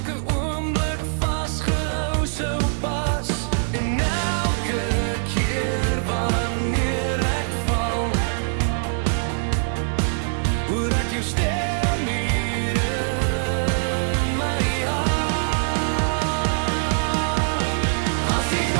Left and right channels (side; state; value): left; silent; digital silence